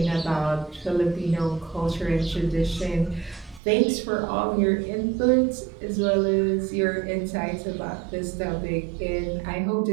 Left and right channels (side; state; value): left; drops out; at 3.6 s